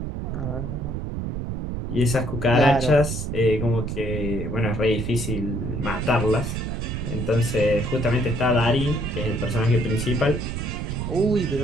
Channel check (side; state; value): right; noise; rumble, 4 dB below the sound